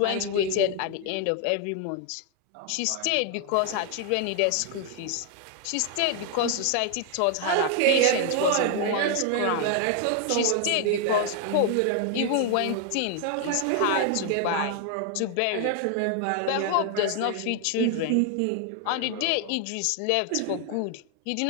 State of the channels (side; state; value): both; different; correlation 0.00